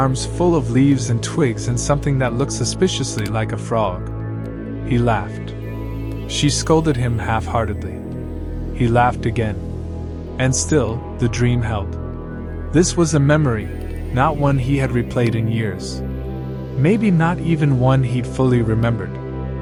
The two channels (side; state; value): both; identical; correlation 1.00